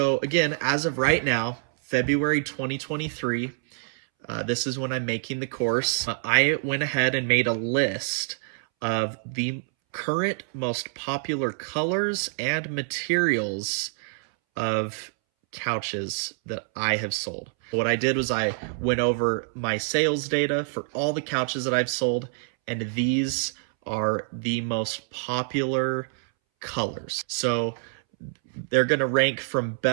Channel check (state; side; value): silent; left; 61 dB below the other